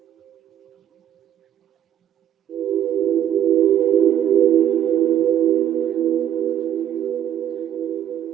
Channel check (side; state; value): left; quieter; 10.5 dB